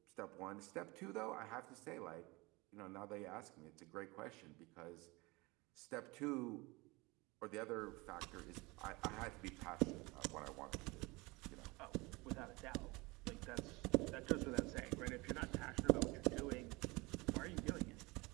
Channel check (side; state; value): left; quieter; 24.2 dB